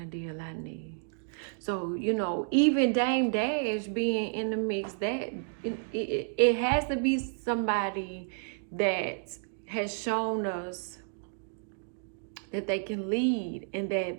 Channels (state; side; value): silent; left; digital silence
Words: of deal I need. So, you know, even Dame Dash being in the mix, that it has to be somebody that has shown us that they can lead and